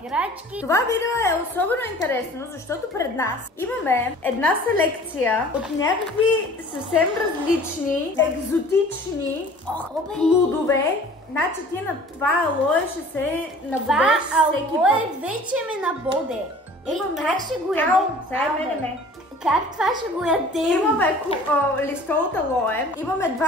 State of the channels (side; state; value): both; normal; correlation 0.47